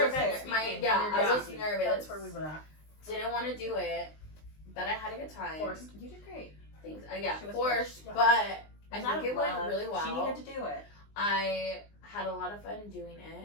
was- event my speaking. yeah, Your I event was speaking. nervous. That's where we were at. Didn't want to do it, but I had a good time. Forced. You did great. Things, yeah, She was forced, forced. but I It's out think of it went love. really well. She needed to do it. I had a lot of fun doing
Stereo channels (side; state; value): right; late; 19 ms